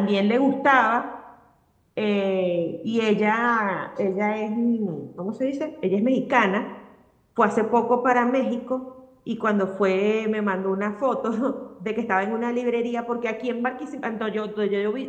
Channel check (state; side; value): identical; both; correlation 1.00